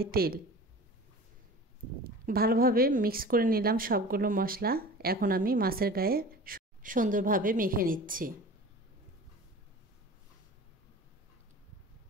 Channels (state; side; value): normal; both; correlation 0.39